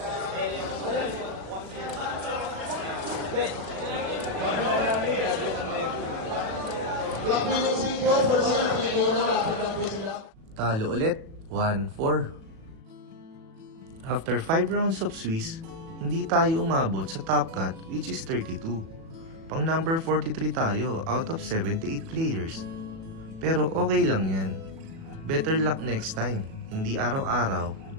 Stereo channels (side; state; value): left; late; 37 ms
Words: Black Minutes po, for sure, po sila. Talo ulit, 1-4. After 5 rounds of Swiss, hindi tayo umabot sa top cut which is 32. Pang number 43 tayo out of 78 players. Pero okay lang yan. Better luck next time, hindi araw-araw,